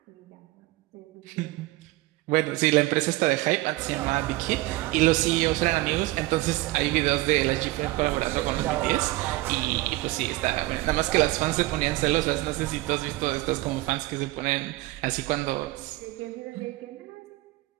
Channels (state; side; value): quieter; left; 19.4 dB